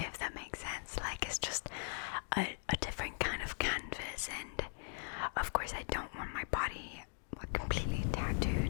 that makes sense. Like, it's just a different kind of canvas, and of course I don't want my body completely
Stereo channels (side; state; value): right; silent; digital silence